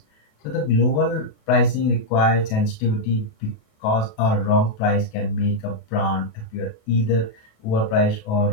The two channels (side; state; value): right; late; 28 ms